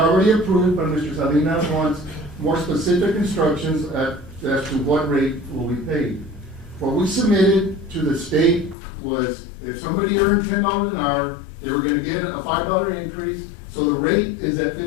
approved, but Mr. Salinas wants more specific instructions as to what rate will be paid. What we submitted to the state was if somebody earned $10 an hour, they were gonna get a $5 increase. So the rate is at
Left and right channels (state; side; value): drops out; right; at 8.8 s